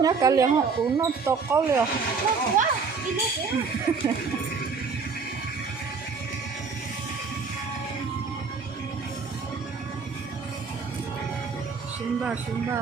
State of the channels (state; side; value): quieter; left; 5.0 dB